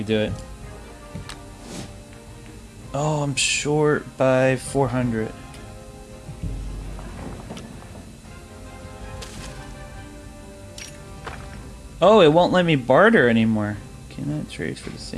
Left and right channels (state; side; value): identical; both; correlation 1.00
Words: do it. Oh, I'm short by 400. Oh, it won't let me barter anymore. Cannot trade for the